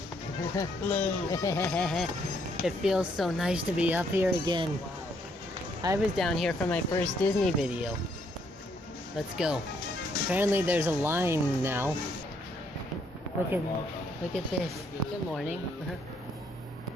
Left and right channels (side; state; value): both; normal; correlation 0.70